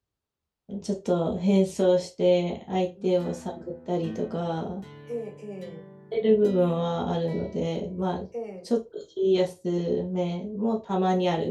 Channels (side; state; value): both; identical; correlation 1.00